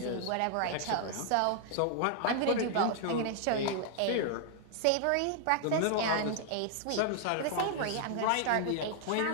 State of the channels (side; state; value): both; different; correlation -0.01